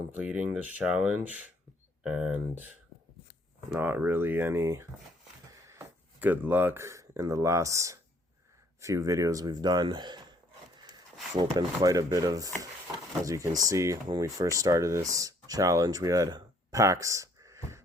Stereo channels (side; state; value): both; normal; correlation 0.63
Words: this challenge, and not really any good luck in the last few videos we've done. We've opened quite a bit of, as you can see, when we first started this challenge, we had packs